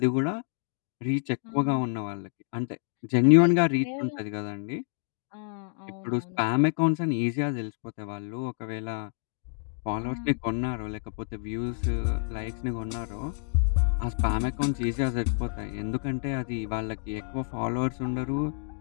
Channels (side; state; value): right; silent; 59 dB below the other